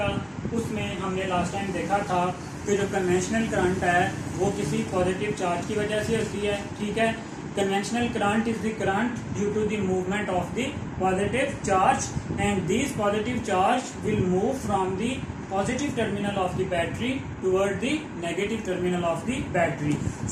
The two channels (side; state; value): both; identical; correlation 1.00